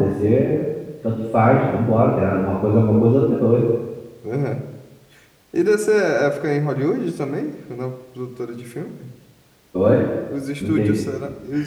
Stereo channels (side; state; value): both; identical; correlation 1.00